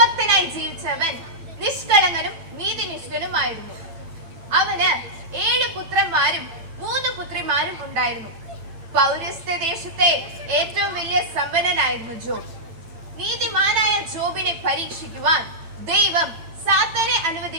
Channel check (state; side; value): late; left; 9.0 ms